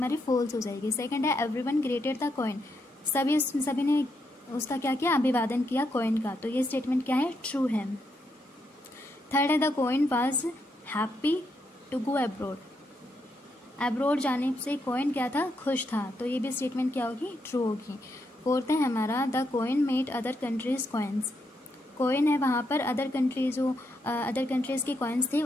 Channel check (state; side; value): normal; both; correlation 0.80